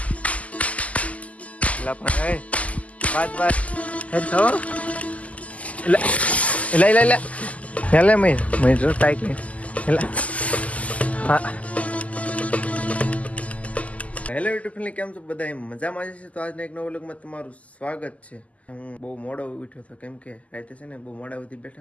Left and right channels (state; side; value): late; right; 0.070 ms